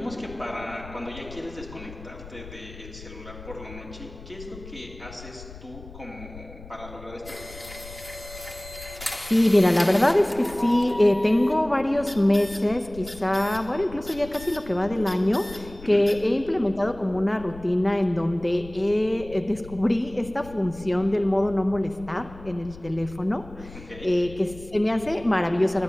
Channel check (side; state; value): left; noise; rumble, 16 dB below the sound